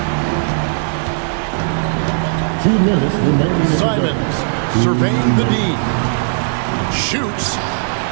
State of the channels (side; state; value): left; silent; digital silence